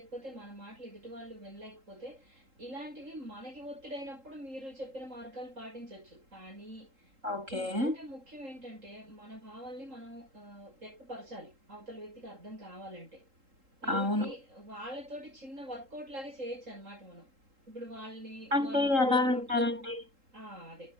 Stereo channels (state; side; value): late; left; 3.8 ms